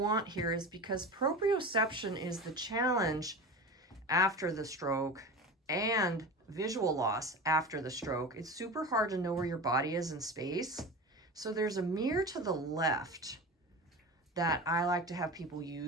here is, because proprioception is the challenge after the stroke and visual loss after the stroke, it's super hard to know where your body is in space. So there's a mirror to the left that I like to have people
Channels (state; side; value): normal; both; correlation 0.30